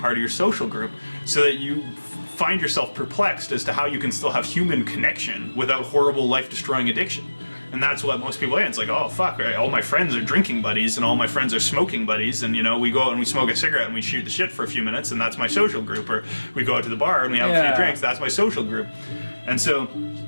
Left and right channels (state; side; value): inverted; both; correlation -1.00